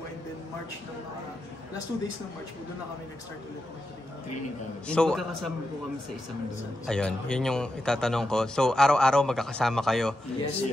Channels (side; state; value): both; normal; correlation 0.87